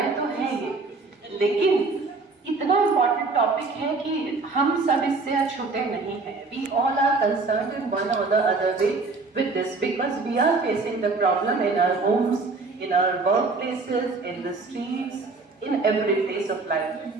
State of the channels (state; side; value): quieter; left; 3.9 dB